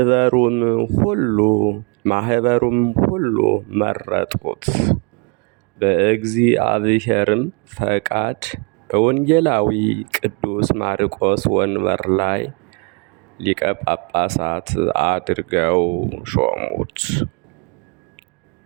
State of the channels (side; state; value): left; quieter; 34.0 dB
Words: ሁሉ መረጡት። በእግዚአብሔርም ፈቃድ በወንጌላዊ ቅዱስ ማርቆስ ወንበር ላይ ሊቀ ጳጳሳት አድርገው ሾሙት።